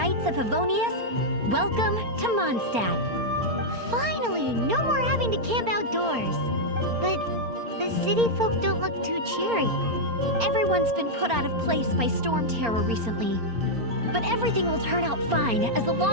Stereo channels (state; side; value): late; left; 4.3 ms